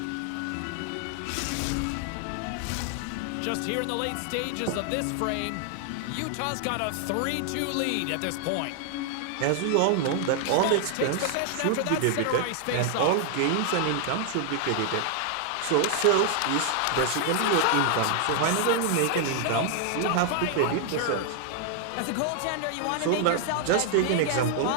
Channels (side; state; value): both; different; correlation 0.00